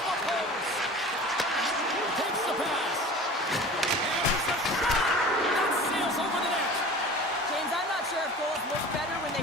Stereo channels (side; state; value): both; normal; correlation 0.39